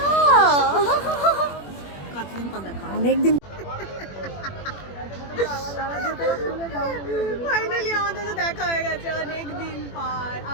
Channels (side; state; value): right; late; 21 ms